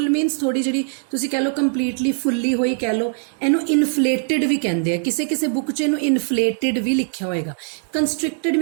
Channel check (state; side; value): silent; left; 61 dB below the other